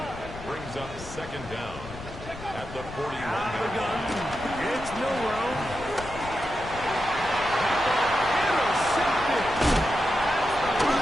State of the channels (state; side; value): noise; left; rumble, 13 dB below the sound